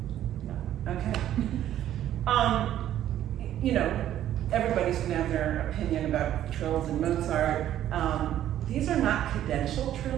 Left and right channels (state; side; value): quieter; left; 11.8 dB